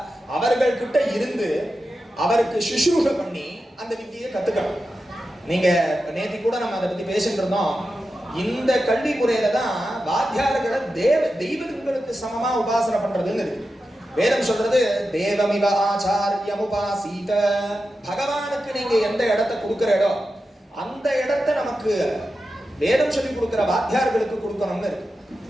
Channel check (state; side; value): normal; both; correlation 0.91